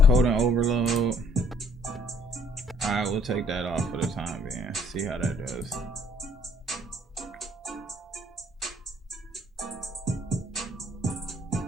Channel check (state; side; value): normal; both; correlation 0.61